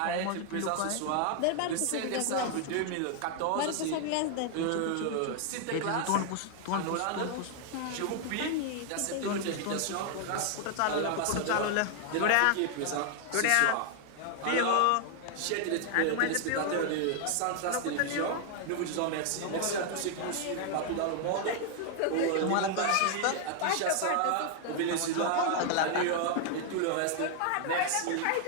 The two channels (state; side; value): different; both; correlation 0.00